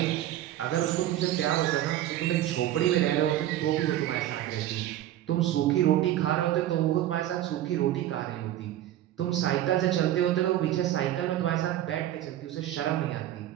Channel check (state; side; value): quieter; left; 13.1 dB